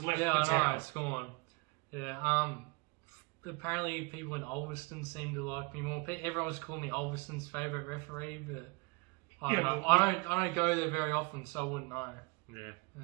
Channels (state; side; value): quieter; left; 28.1 dB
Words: left the town. I know, it's gone. Yeah, apparently people in Ulverston seem to like me more. Everyone was calling me Ulverston's favourite referee, but I don't know. I don't go there very often, so I wouldn't know. Yeah,